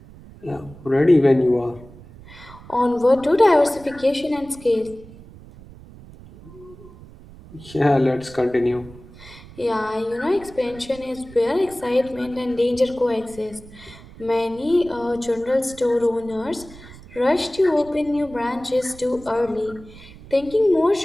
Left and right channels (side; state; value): right; noise; rumble, 19 dB below the sound